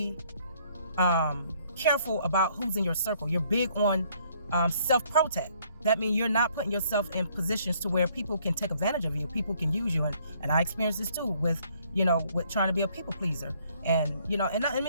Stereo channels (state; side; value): inverted; both; correlation -0.64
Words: careful about who's in your circle. You're big on self-protect. that means you're not putting yourself in positions to where people can take advantage of you. People can use you. And I experienced this too with trying to be a people pleaser. And, and let